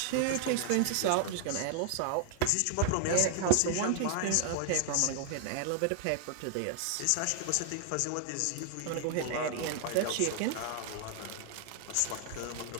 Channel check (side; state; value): both; different; correlation 0.00